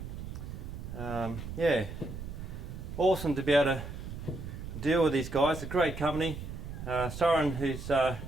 yeah, awesome to be able to deal with these guys. A great company. Soren, who's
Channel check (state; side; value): noise; right; rumble, 8 dB below the sound